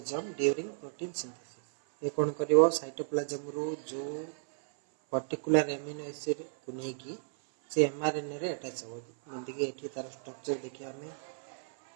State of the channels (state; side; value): silent; left; 56 dB below the other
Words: during protein synthesis ये कोन करिवो साइटोप्लाज्म रो जो पर्टिकुलर एमिनो एसिड को नै की से एमआरएनए रे अटैच हो जेंति कि एठी तार स्ट्रक्चर देखि हमें